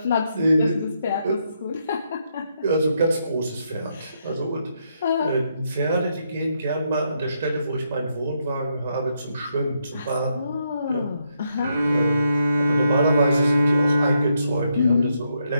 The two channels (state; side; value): inverted; both; correlation -0.78